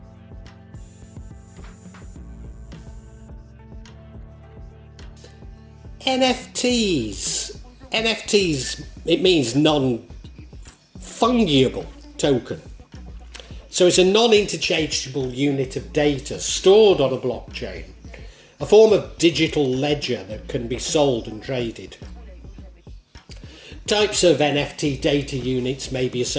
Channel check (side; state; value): both; identical; correlation 1.00